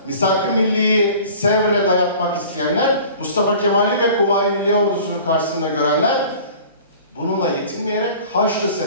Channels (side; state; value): both; inverted; correlation -0.45